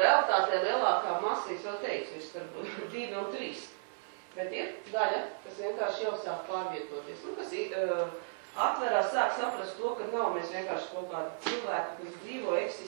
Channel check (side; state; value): left; silent; 55 dB below the other